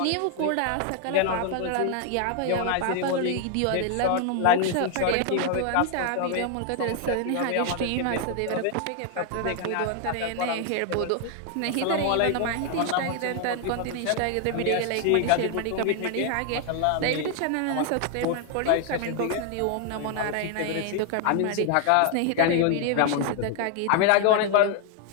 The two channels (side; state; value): both; different; correlation 0.00